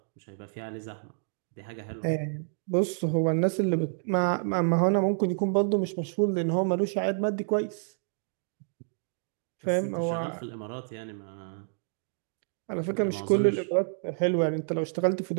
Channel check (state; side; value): silent; left; digital silence